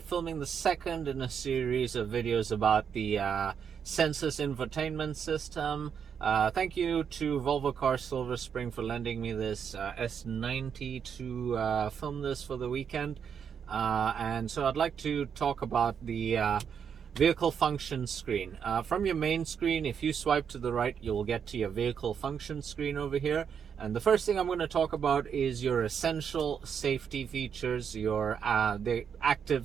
the second in a series of videos about the Sensus infotainment system. Thank you to Volvo Car Silver Spring for lending me this S90 to film this for the weekend. And so I'd like to talk about the vehicle function screen. From your main screen, if you swipe to the right, you'll get to your vehicle function screen over here. And the first thing I'm going to talk about is your essential safety features, your the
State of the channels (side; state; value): left; quieter; 7.4 dB